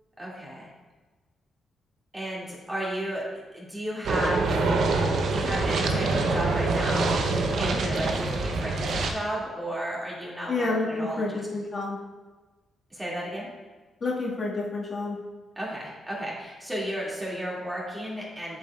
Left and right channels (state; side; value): normal; both; correlation 0.77